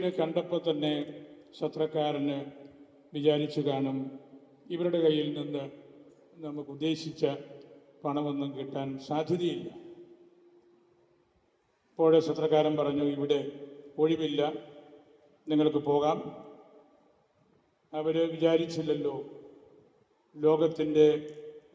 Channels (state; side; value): identical; both; correlation 1.00